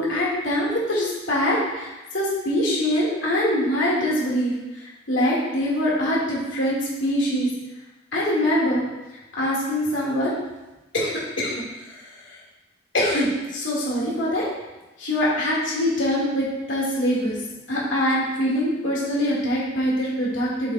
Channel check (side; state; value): both; normal; correlation 0.39